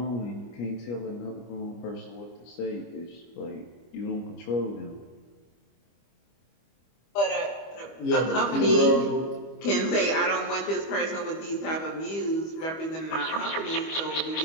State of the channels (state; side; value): late; right; 25 ms